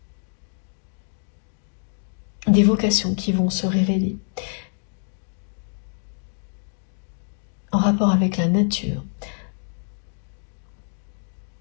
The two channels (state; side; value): silent; right; digital silence